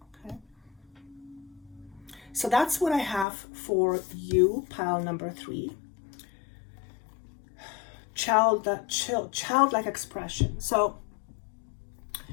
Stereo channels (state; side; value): drops out; right; at 3.2 s